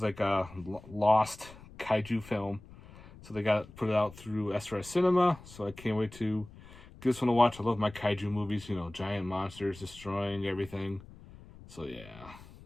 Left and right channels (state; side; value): noise; left; rumble, 19 dB below the sound